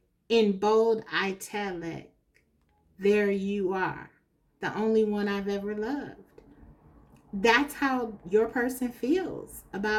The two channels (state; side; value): identical; both; correlation 1.00